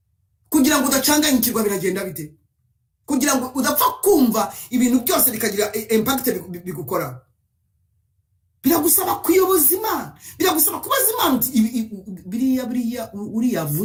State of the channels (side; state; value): both; identical; correlation 1.00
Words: Kugira ngo udacanganyikirwa biragenda bite? Kugira ngo udapfa kumva ibintu byose bikagira impact bigukora, biragusaba kuyoboza Imana, biragusaba kubaza Imana biriya uriya